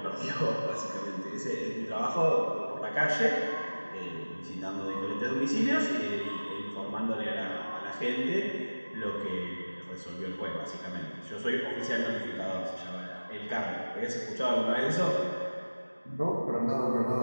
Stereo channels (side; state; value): both; inverted; correlation -1.00